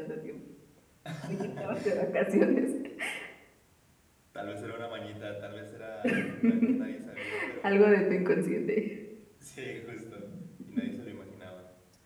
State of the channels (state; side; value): identical; both; correlation 1.00